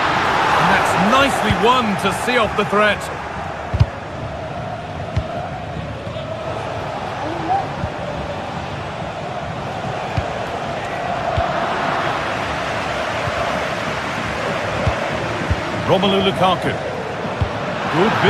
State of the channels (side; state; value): both; identical; correlation 1.00